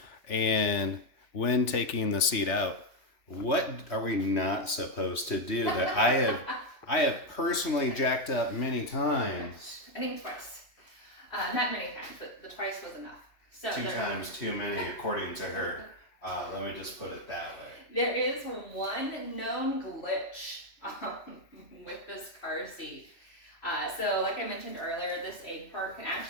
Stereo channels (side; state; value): right; late; 3.0 ms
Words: And when taking the seat out, what are we not supposed to do that I have personally jacked up many times? I think twice. Not many times, but the twice was enough. So 2 times too many, according to her. Let me just put it that way. There is one known glitch with this car seat. So like I mentioned earlier, this egg part can